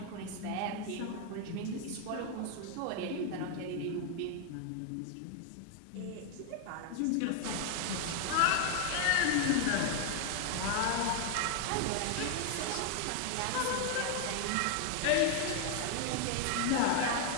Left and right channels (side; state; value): both; different; correlation 0.00